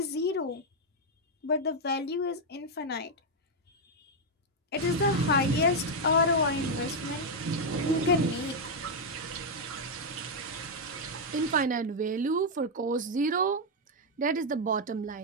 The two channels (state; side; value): normal; both; correlation 0.00